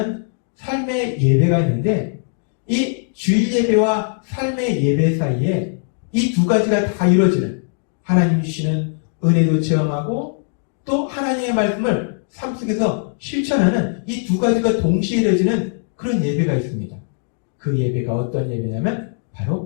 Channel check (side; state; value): right; silent; digital silence